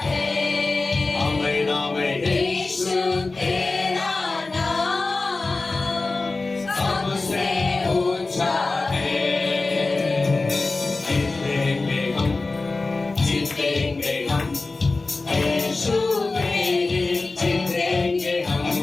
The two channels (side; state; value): right; quieter; 3.5 dB